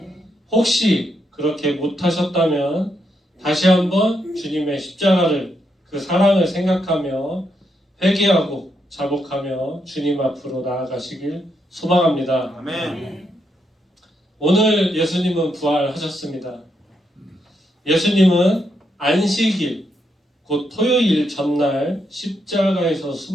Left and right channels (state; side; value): normal; both; correlation 0.80